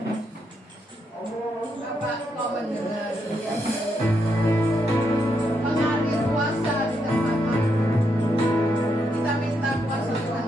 Bapak, kau mendengar mengalir kuasa di tempat kami. Kita minta kuasa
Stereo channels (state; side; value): normal; both; correlation 0.79